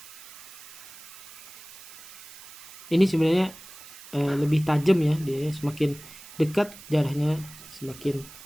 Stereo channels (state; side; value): noise; right; hiss, 17 dB below the sound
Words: Ini sebenarnya lebih tajam ya, dia semakin dekat jaraknya semakin